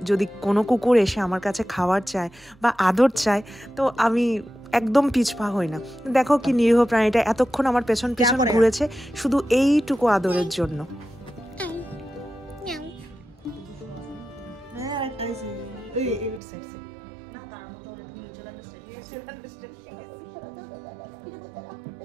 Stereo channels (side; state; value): left; drops out; at 16.4 s